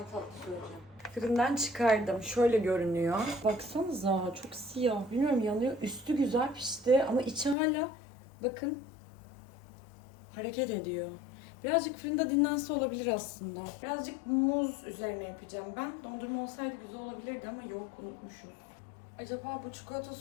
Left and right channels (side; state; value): right; drops out; at 7.6 s